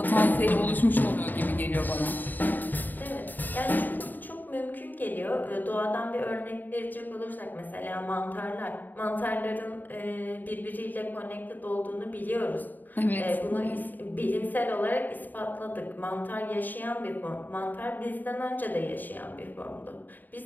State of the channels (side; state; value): right; late; 0.088 ms